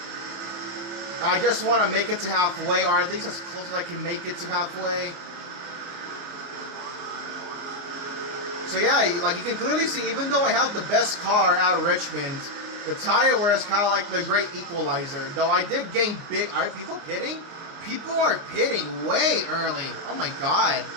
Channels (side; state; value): left; late; 29 ms